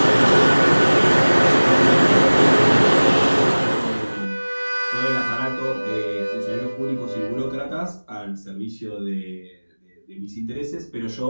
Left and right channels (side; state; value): both; inverted; correlation -1.00